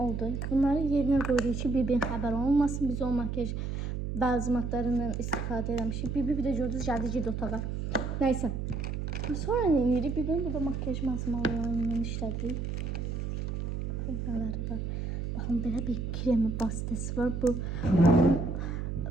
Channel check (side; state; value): right; noise; hum, 3 dB below the sound